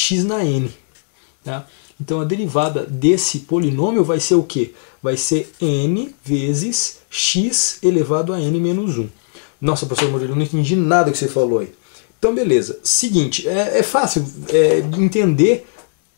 na n. Tá? Então a derivada desse polinômio vai ser o quê? Vai ser n vezes x elevado a n menos 1. Nossa, professor Murilo, eu não entendi nada que você falou aí. Então beleza, seguinte, é fácil entender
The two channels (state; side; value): silent; right; digital silence